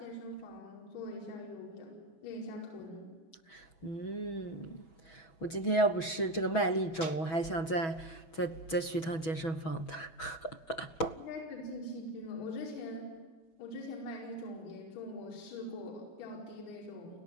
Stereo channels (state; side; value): late; right; 6.2 ms